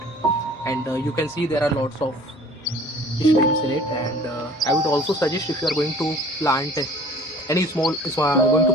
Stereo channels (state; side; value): normal; both; correlation 0.49